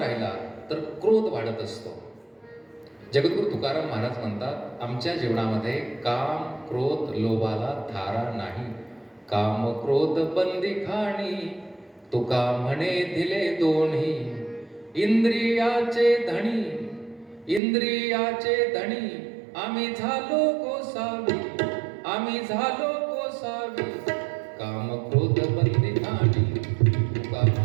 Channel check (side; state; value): left; drops out; at 17.6 s